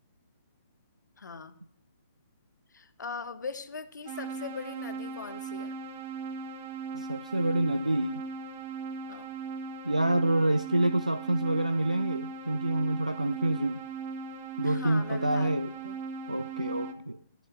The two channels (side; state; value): both; inverted; correlation -0.79